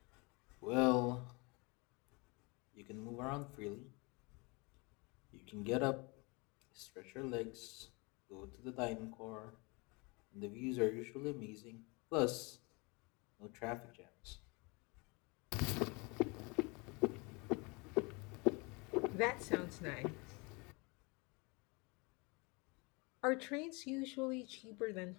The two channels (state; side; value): quieter; right; 28.3 dB